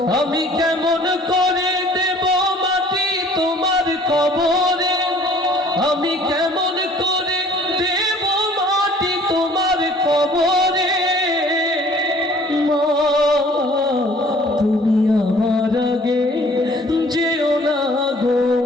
আমি কেমন করে দেব মাটি তোমার কবরে, আমি কেমন করে দেব মাটি তোমার কবরে মা, তুমি আমার আগে যেও না গো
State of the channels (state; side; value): normal; both; correlation 0.54